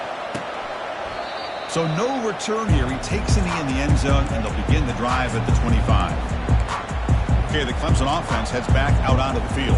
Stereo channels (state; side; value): identical; both; correlation 1.00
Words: So no return here. He takes it in the end zone, and they'll begin the drive at the 25. Okay, the Clemson offense heads back out onto the